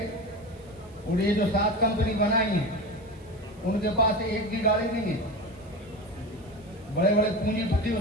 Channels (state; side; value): noise; right; hiss, 30 dB below the sound